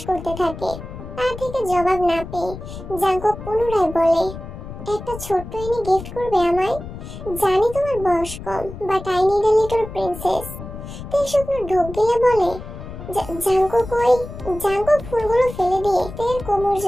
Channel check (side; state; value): left; noise; rumble, 11 dB below the sound